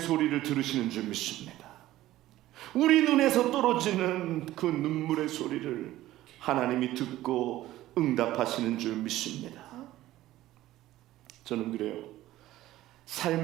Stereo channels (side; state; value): left; quieter; 15.2 dB